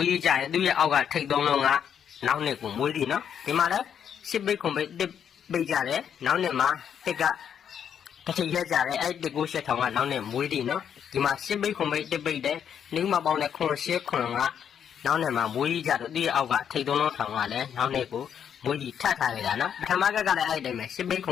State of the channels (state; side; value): quieter; right; 8.4 dB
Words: းကြရင်သူ့ရဲ့အောက်ကထိတ်သုံးလုံးကနောက်နဲ့ကိုမွေးသည်နော်ဒီမှာလည်းစစ်ပိတ်ခွန်ပိတ်တစ်ပိတ်ကြတယ်နောက်နဲ့မှာတစ်ကတစ်ချိန်ရက်ကြတယ်အဲ့တစ်ကိုရှက်ထောင်ကနောက်နဲ့မွေးသည်နော်ဒီမှာစစ်ပိတ်ခွန်ပိတ်တစ်ပိတ်တဲ့နှင်းမပေါင်းတဲ့ခွန်ရှက်ခွန်ကနောက်နဲ့မှာမွေးကြတော့ဒီအောက်ကထိတ်သုံးလုံးထောင်ကလည်းနောက်နဲ့ကိုမွေးကြီးထပ်ထားနေတာနော်ပထမကလည်းအဲ့တိုင်းပဲစစ်ပိတ်ခွ